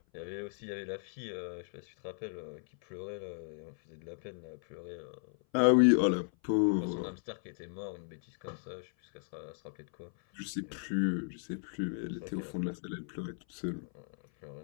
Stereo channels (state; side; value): silent; right; 54 dB below the other